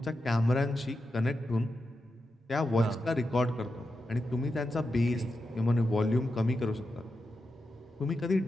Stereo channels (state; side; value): normal; both; correlation 0.88